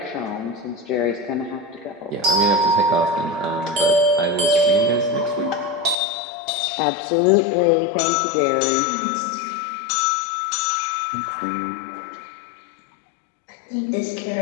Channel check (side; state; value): right; drops out; at 6.0 s